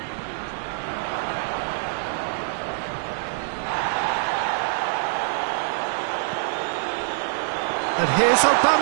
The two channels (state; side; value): silent; left; digital silence